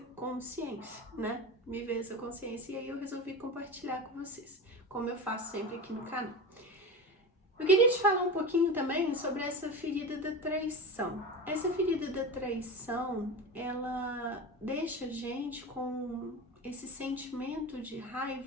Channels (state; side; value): normal; both; correlation 0.26